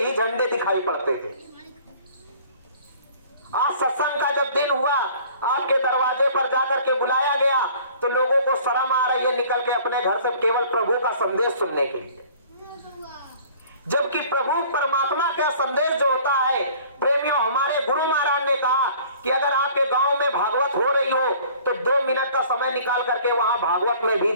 झंडे दिखाई पड़ते थे। आज सत्संग का जब दिन हुआ, आपके दरवाजे पर जाकर के बुलाया गया तो लोगों को शर्म आ रही है निकल के अपने घर से केवल प्रभु का संदेश सुनने के लिए, जबकि प्रभु परमात्मा का संदेश जो होता है। प्रेमियों, हमारे गुरु महाराज ने कहा कि अगर आपके गांव में भागवत हो रही हो तो 2 मिनट का समय निकाल करके वहां भागवत में भी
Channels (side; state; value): both; inverted; correlation -0.51